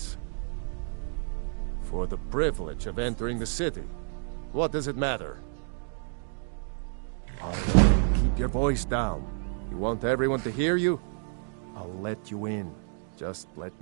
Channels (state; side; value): silent; left; 58 dB below the other